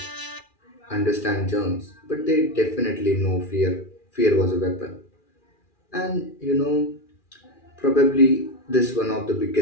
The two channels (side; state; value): right; late; 2.4 ms